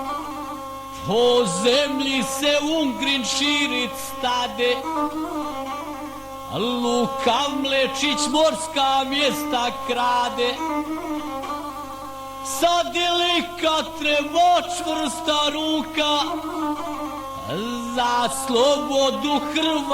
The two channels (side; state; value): both; identical; correlation 1.00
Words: po zemlji se Ungrin širit stade, Luka Mlečić morska mjesta krade, sad je lika treba čvrsta ruka, za slobodu